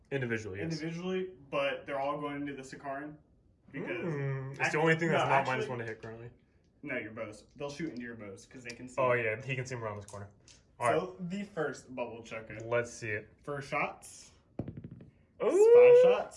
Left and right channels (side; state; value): both; identical; correlation 1.00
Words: Individually, yes. individually, but they're all going into the Sakaran. Because It's the only thing that's no, not actually- -1 to hit currently. No, your bows. They'll shoot into your bows because they can see. Oh yeah, he can see him around this corner. All right, So the first bubble chucker. let's see it. First shots. Ooh, 5